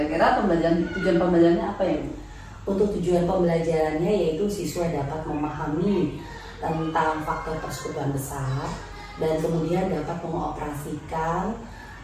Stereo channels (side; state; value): both; identical; correlation 1.00